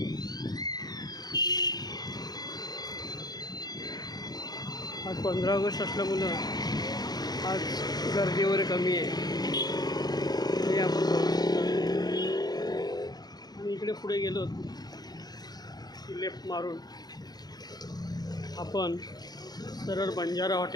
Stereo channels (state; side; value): late; right; 0.19 ms